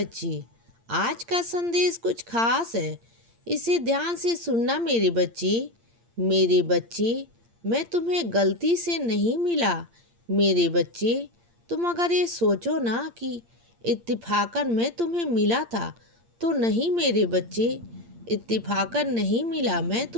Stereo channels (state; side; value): late; left; 8.7 ms